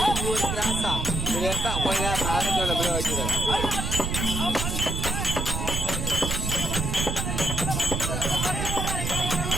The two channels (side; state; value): right; noise; rumble, 2 dB below the sound